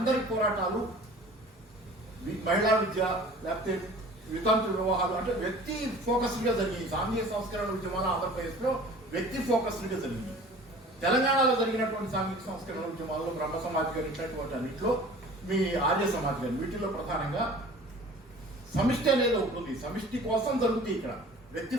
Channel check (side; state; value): both; normal; correlation 0.45